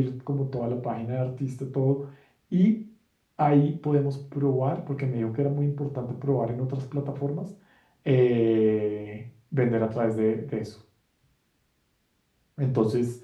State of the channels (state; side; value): identical; both; correlation 1.00